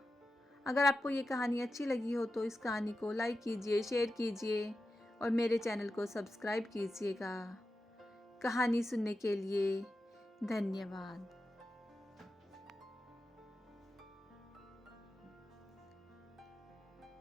अगर आपको ये कहानी अच्छी लगी हो तो इस कहानी को लाइक कीजिए, शेयर कीजिए और मेरे चैनल को सब्सक्राइब कीजिएगा। कहानी सुनने के लिए धन्यवाद।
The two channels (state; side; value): normal; both; correlation 0.91